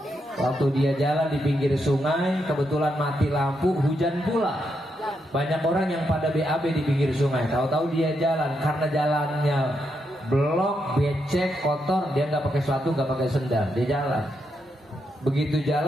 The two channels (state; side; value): normal; both; correlation 0.81